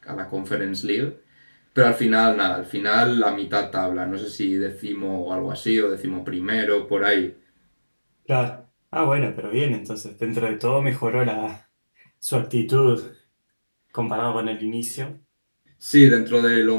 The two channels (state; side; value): inverted; both; correlation -1.00